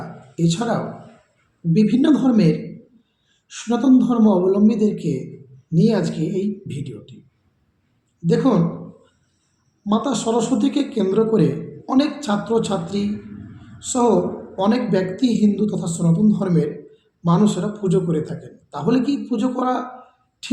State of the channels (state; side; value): identical; both; correlation 1.00